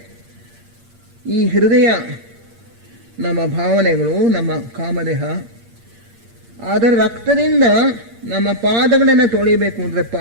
ಈ ಹೃದಯ ನಮ್ಮ ಭಾವನೆಗಳು, ನಮ್ಮ ಕಾಮದೇಹ, ಅದರ ರಕ್ತದಿಂದ ನಮ್ಮ ಪಾದಗಳನ್ನು ತೊಳೆಯಬೇಕು. ಅಂದರೆ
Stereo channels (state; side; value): late; left; 8.7 ms